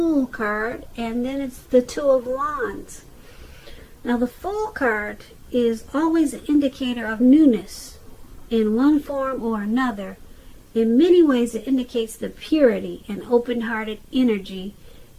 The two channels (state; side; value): identical; both; correlation 1.00